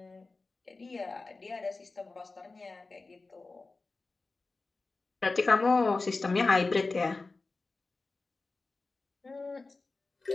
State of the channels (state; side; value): quieter; right; 3.7 dB